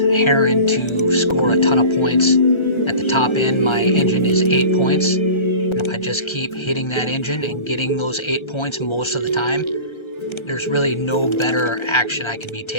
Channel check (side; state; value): right; late; 1.3 ms